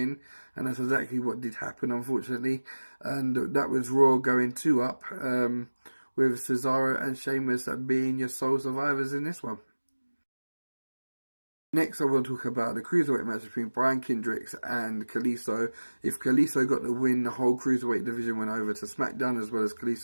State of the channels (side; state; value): both; inverted; correlation -1.00